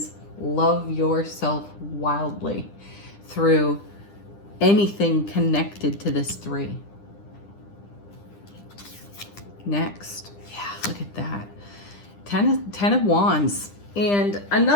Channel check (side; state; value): right; late; 10 ms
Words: love yourself wildly through anything connected to this three. Next, yeah, look at that. Ten of Wands. And